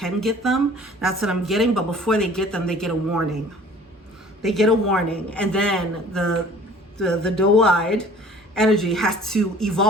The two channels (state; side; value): normal; both; correlation 0.50